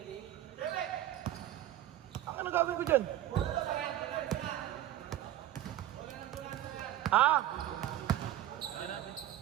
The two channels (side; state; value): left; quieter; 13.1 dB